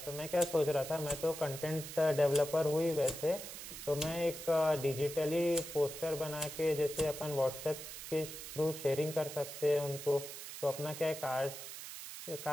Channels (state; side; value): noise; right; hiss, 10 dB below the sound